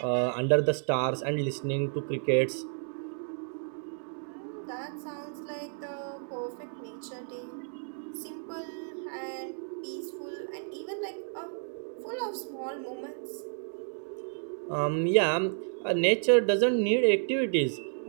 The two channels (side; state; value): left; silent; 57 dB below the other